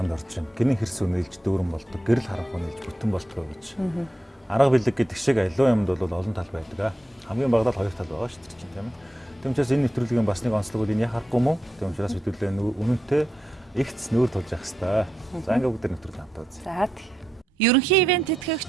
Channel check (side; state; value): both; normal; correlation 0.86